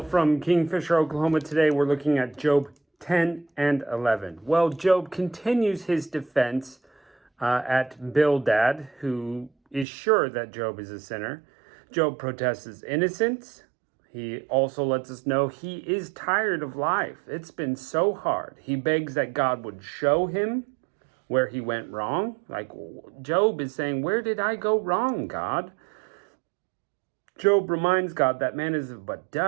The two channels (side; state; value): left; drops out; at 9.9 s